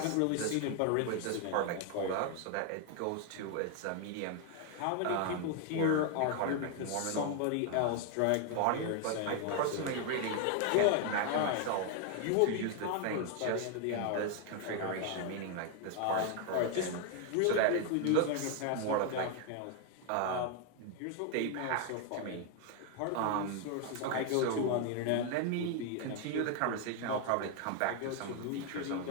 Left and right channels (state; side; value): different; both; correlation 0.01